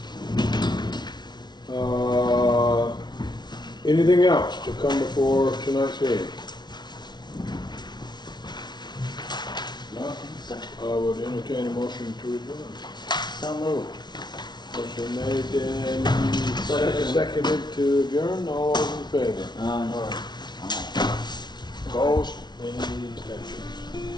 Anything else to come before tonight's meeting? I would entertain a motion to adjourn. So moved. Motion made and seconded to adjourn. All those in favor? Aye. Opposed? Any abstentions?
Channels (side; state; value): right; late; 0.21 ms